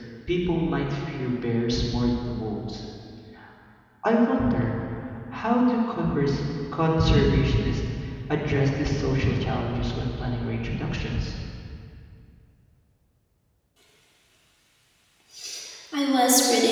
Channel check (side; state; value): both; identical; correlation 1.00